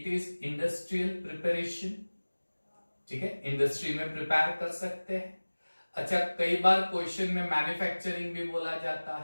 इज इंडस्ट्रियल प्रिपरेशन, ठीक है। इंडस्ट्री में प्रिपेयर कर सकते हैं। अच्छा, कई बार क्वेश्चन में मैन्युफैक्चरिंग भी बोला जाता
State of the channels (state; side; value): inverted; both; correlation -1.00